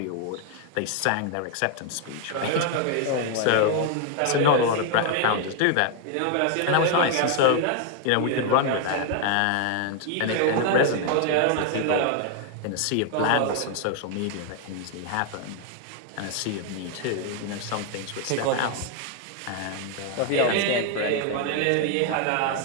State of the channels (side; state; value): both; different; correlation 0.00